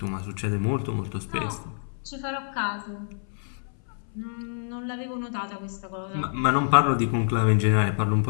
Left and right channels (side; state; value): right; silent; 60 dB below the other